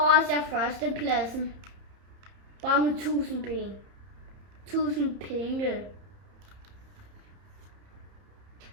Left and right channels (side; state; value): left; late; 31 ms